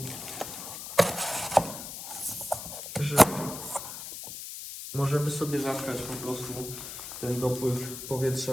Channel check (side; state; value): left; noise; hiss, 9 dB below the sound